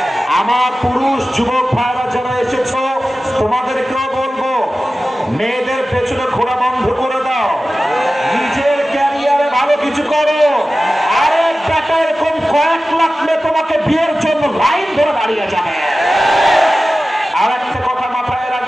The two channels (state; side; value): normal; both; correlation 0.95